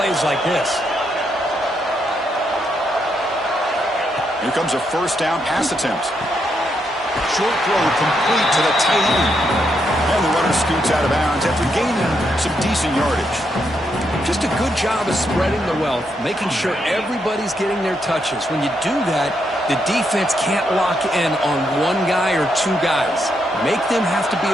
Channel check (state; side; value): normal; both; correlation 0.79